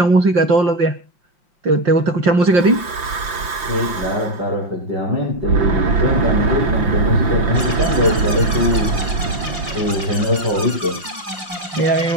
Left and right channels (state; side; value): late; left; 5.9 ms